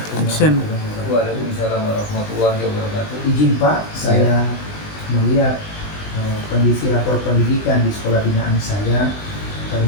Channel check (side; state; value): right; late; 20 ms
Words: action. Waalaikumsalam warahmatullahi wabarakatuh. Izin Pak, saya melihat kondisi rapor pendidikan di sekolah binaan saya.